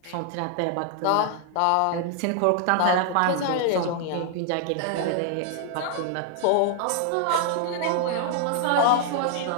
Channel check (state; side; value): different; both; correlation 0.00